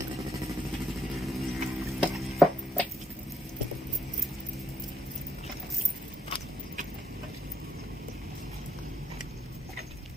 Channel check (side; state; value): both; normal; correlation 0.75